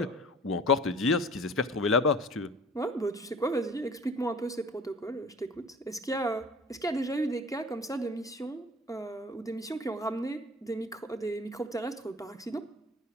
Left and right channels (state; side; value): normal; both; correlation 0.45